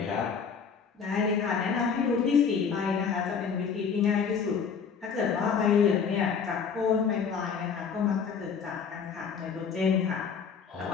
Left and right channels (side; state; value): right; quieter; 6.3 dB